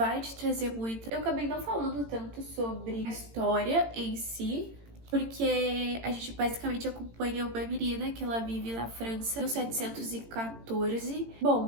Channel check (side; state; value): left; late; 18 ms